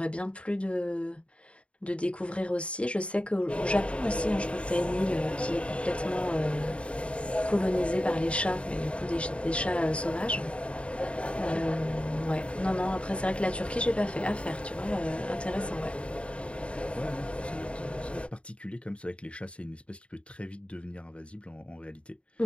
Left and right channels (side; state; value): right; late; 0.060 ms